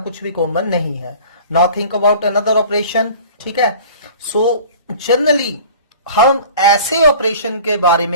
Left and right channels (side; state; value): both; inverted; correlation -0.44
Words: कुछ भी कॉमन नहीं है। Now think about another operation, ठीक है। सो जनरली हम ऐसे ऑपरेशन के बारे